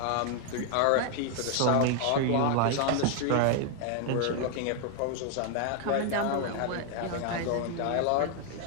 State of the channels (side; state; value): both; different; correlation 0.00